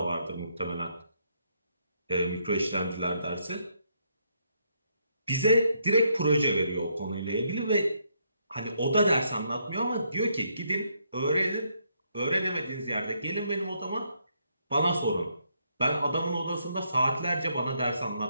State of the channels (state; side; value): inverted; both; correlation -0.75